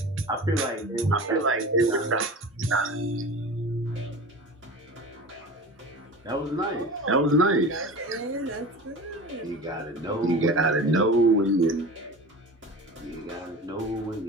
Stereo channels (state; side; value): normal; both; correlation 0.34